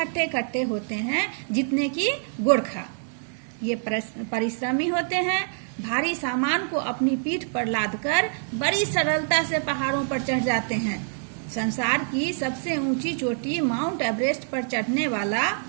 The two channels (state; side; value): silent; left; digital silence